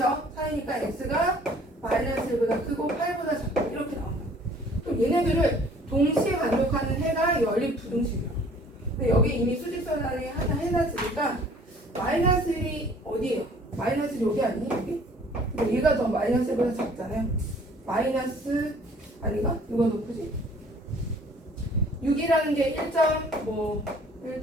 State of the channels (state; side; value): normal; both; correlation 0.54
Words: 사이니까 x가 마이너스 1보다 크고 8보다 작다. 이렇게 나온다. 그럼 얘네들을 동시에 만족하는 해가 연립 부등식이야. 근데 여기 이미 수직선상에 하나 해놨으니까 마이너스 1이 어디예요? 마이너스 1이 여기 아니니? 여기? 근데 얘가 더 마이너스 1보다 작잖아요. 마이너스 아닌가? 누가 높으지? 6이라는 게 1점